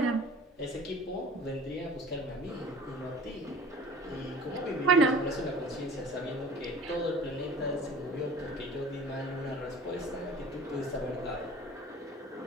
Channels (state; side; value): normal; both; correlation 0.45